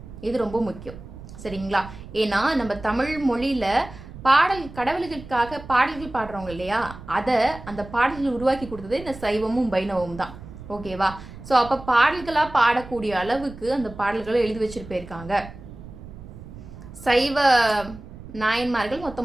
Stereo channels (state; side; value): noise; right; rumble, 15 dB below the sound